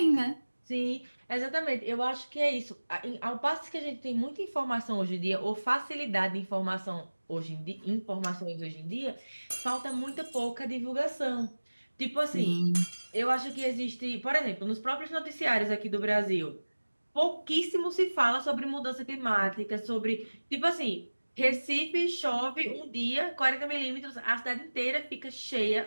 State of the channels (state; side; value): inverted; both; correlation -1.00